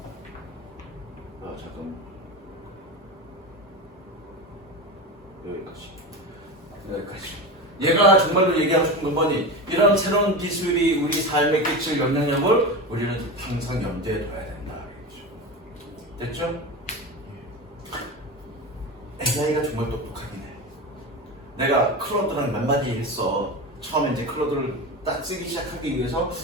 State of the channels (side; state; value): both; normal; correlation 0.24